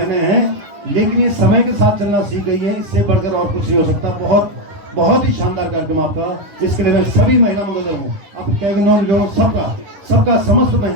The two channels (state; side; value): late; left; 10 ms